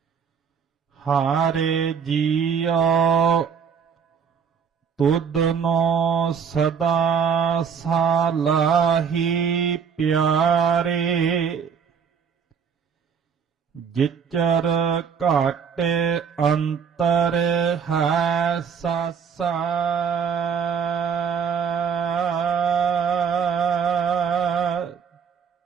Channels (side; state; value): left; quieter; 6.8 dB